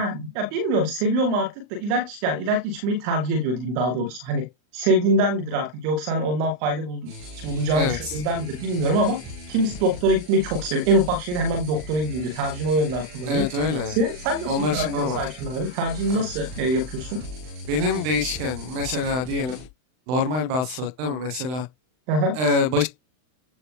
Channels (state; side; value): late; left; 39 ms